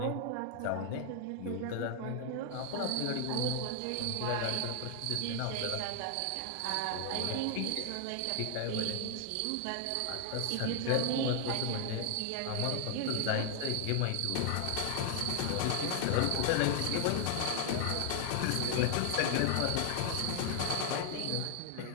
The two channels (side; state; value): both; different; correlation 0.00